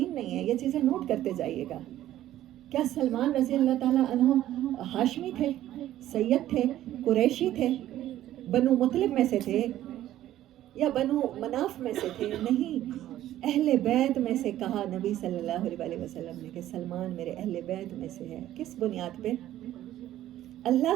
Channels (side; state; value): left; quieter; 13.2 dB